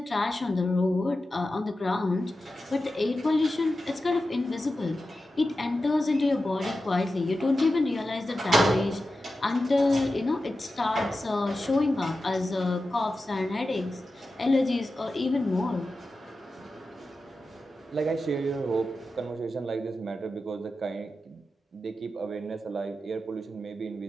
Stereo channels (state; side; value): normal; both; correlation 0.92